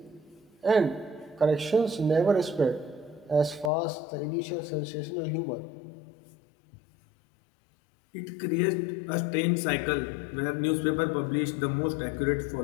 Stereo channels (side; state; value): right; drops out; at 3.7 s